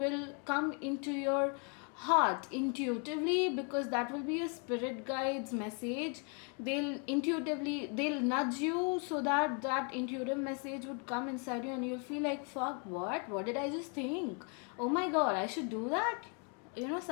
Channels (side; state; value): right; quieter; 38.2 dB